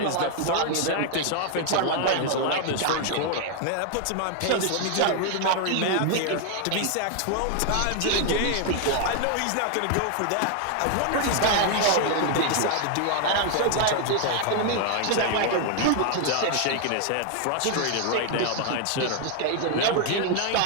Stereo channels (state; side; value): different; both; correlation 0.00